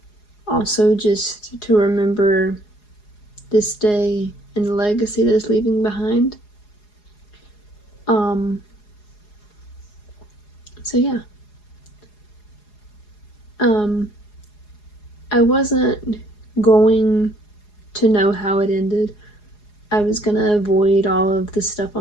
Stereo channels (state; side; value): late; right; 4.8 ms